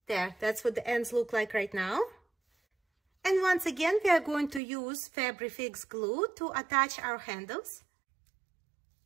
There, that's what the ends look like right now. And once again, we are going to use Fabric Fix glue to attach our handles.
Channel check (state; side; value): drops out; left; at 4.6 s